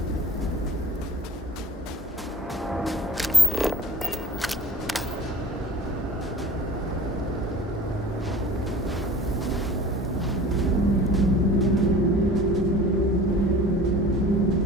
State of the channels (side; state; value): both; normal; correlation 0.43